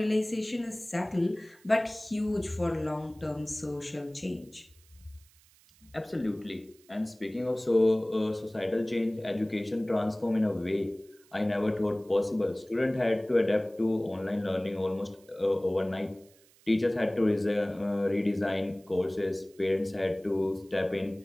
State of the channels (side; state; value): right; noise; hiss, 29 dB below the sound